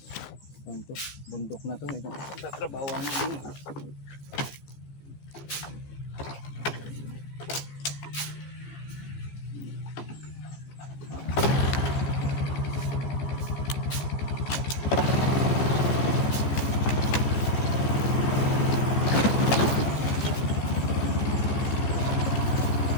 ano, bundok na to, itong tatrabawan namin.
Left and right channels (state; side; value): late; right; 15 ms